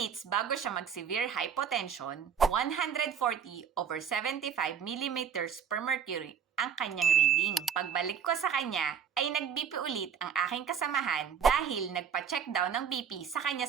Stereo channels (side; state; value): left; quieter; 7.6 dB